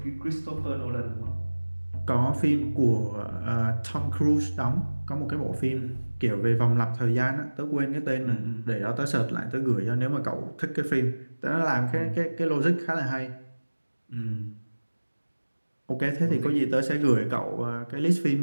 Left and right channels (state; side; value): inverted; both; correlation -1.00